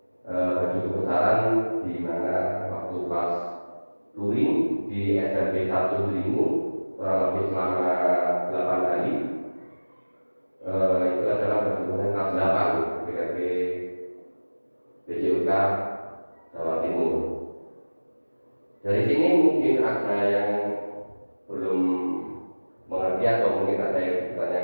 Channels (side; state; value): both; inverted; correlation -1.00